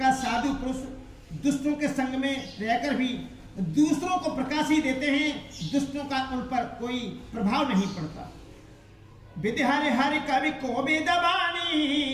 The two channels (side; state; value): both; identical; correlation 1.00